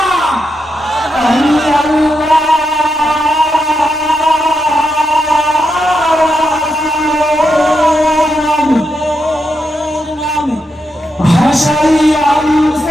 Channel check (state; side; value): normal; both; correlation 0.84